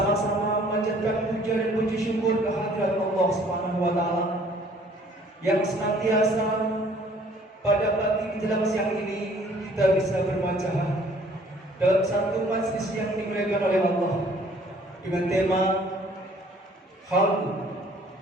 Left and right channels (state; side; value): normal; both; correlation 0.57